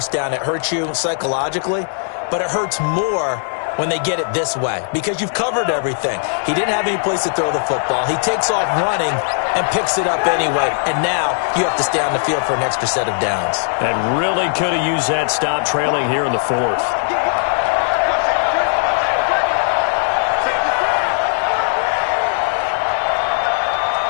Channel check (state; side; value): silent; right; digital silence